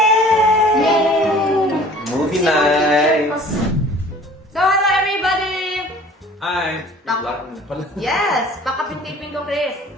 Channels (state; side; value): normal; both; correlation 0.48